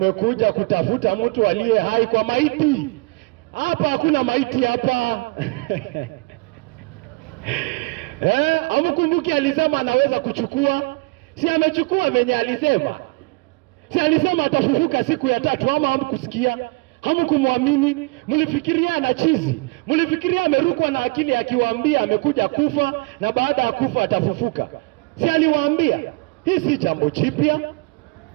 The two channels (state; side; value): quieter; left; 26.6 dB